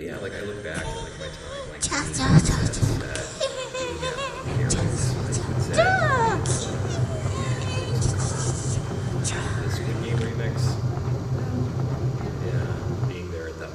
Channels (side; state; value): both; identical; correlation 1.00